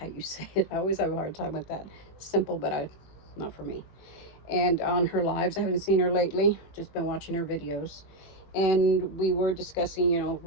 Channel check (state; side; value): late; right; 21 ms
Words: you say it. I always have a hard time with that. Simple, but not for me. And on her lives, I haven't seen her lately, just been watching her videos, and we were discussing, you know,